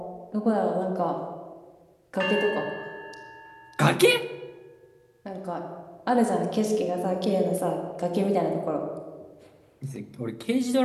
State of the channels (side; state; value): both; identical; correlation 1.00